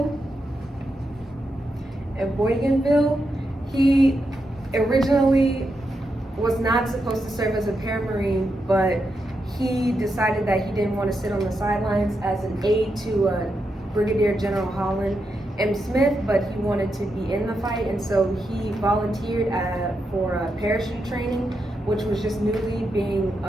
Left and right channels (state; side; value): normal; both; correlation 0.84